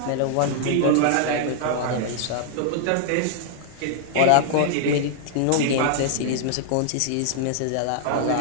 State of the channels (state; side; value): different; both; correlation -0.01